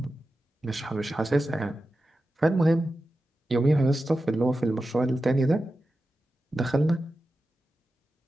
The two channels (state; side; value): normal; both; correlation 0.92